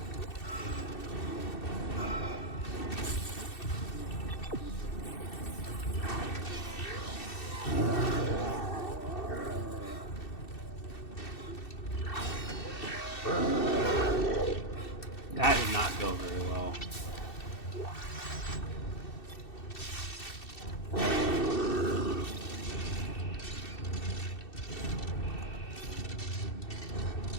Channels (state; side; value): late; right; 2.7 ms